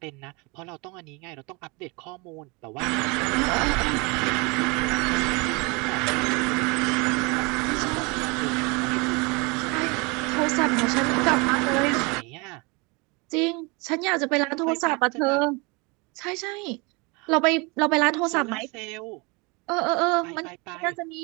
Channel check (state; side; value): quieter; left; 28.5 dB